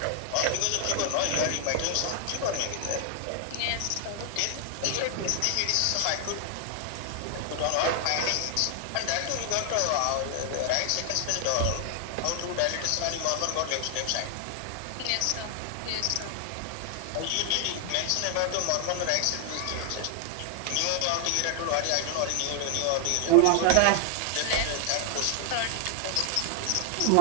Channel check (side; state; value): both; different; correlation 0.00